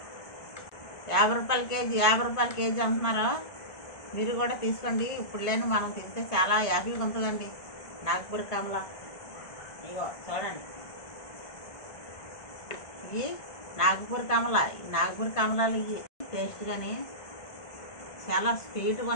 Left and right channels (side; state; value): right; late; 1.5 ms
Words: 50 రూపాయల కేజీ, 50 రూపాయల కేజీ అంటున్నారు. మీరు కూడా తీసుకోండి. ఇప్పుడు లేని మనం తింటే చాలా హ్యాపీగా ఉంటుందండి. నాగపూర్ కమల ఇగో చూడండి, ఇవి నాగపూర్ కమల. నాగపూర్ కమలాలు ఇవి టేస్ట్ కానీ చాలా స్వీట్గా